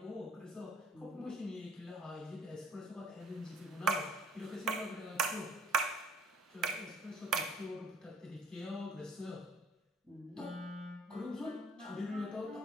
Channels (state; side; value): normal; both; correlation 0.57